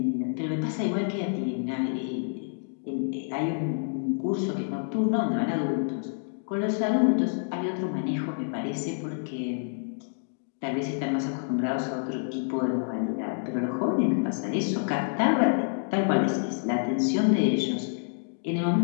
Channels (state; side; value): silent; right; digital silence